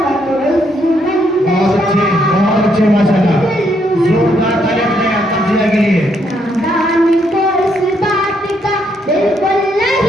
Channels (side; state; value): both; normal; correlation 0.74